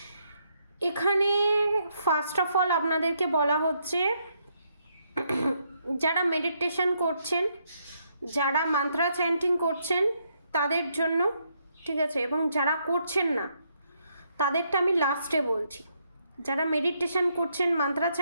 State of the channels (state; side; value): inverted; both; correlation -0.75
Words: এখানে ফার্স্ট অফ অল আপনাদেরকে বলা হচ্ছে, যারা মেডিটেশন করছেন, যারা মান্ত্রা চ্যান্টিং করছেন তাদের জন্য, ঠিক আছে? এবং যারা করছেন না তাদেরটা আমি লাস্টে বলছি। যারা মেডিটেশন করছেন, মান্ত্রা